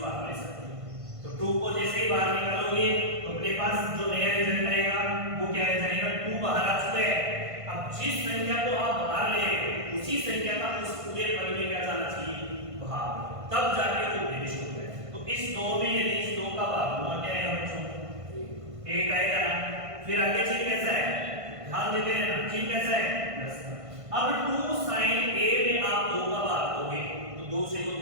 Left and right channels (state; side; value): late; left; 1.5 ms